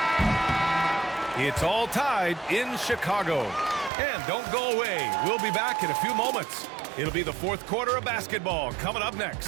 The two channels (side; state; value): left; drops out; at 3.9 s